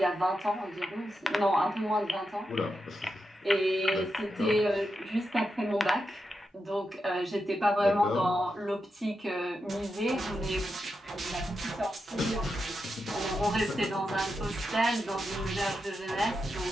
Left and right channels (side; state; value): both; normal; correlation 0.87